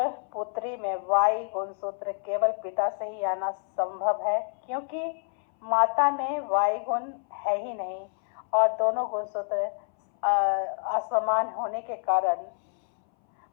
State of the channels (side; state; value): right; silent; 60 dB below the other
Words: पुत्री में Y गुणसूत्र केवल पिता से ही आना संभव है क्योंकि माता में Y गुण है ही नहीं और दोनों गुणसूत्र असमान होने के कारण